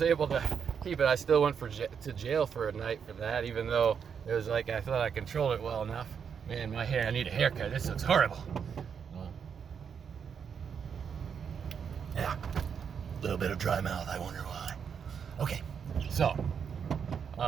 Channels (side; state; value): left; quieter; 7.0 dB